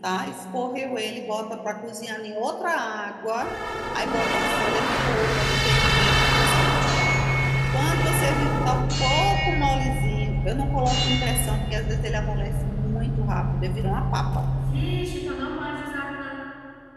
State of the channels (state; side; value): identical; both; correlation 1.00